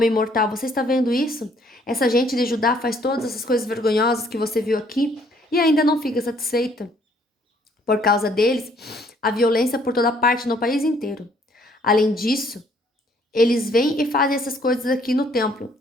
mortal, você está vendo isso? Essa gente de Judá faz todas essas coisas vergonhosas que você viu aqui e ainda não fica satisfeita. Por causa deles, há violência por toda parte no país inteiro. Além disso, eles vêm e fazem essas coisas aqui no templo,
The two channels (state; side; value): normal; both; correlation 0.64